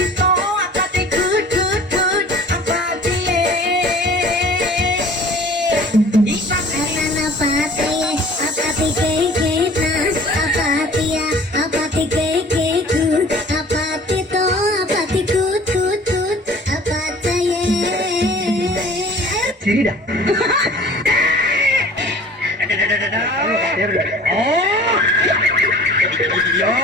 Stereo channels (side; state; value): both; normal; correlation 0.46